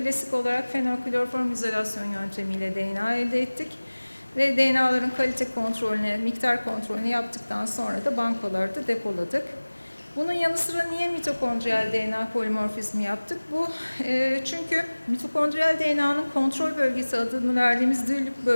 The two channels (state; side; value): inverted; both; correlation -1.00